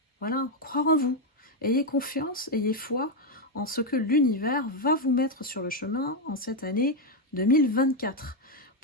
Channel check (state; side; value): normal; both; correlation 0.03